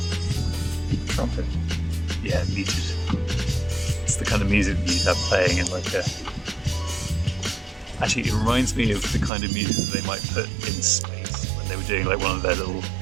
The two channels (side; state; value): left; drops out; at 9.3 s